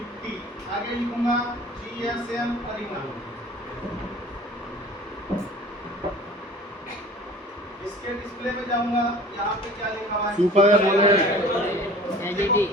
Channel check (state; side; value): normal; both; correlation 0.45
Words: आगे लिखूंगा GSM अरीना। इसके डिस्प्ले में जाऊंगा, यहाँ पे क्या लिखा हुआ है? Super AMOLED. देखो,